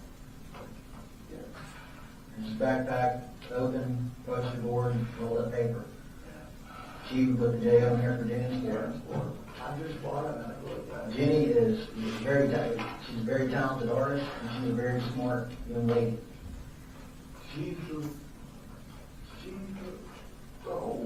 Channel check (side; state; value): both; identical; correlation 1.00